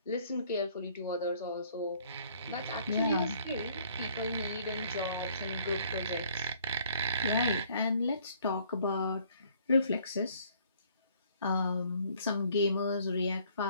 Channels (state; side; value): inverted; both; correlation -0.61